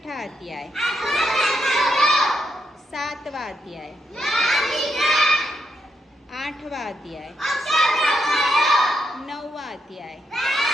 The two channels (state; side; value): normal; both; correlation 0.80